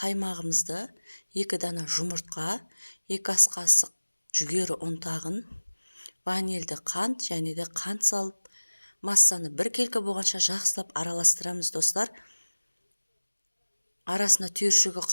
2 дана жұмыртқа, 2 ас қасық жүгері ұнтағын, ванильді қант және де қант салып, массаны 1 келкі болғанша жақсылап араластырамыз, достар. Арасына түйіршігі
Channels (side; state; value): both; inverted; correlation -1.00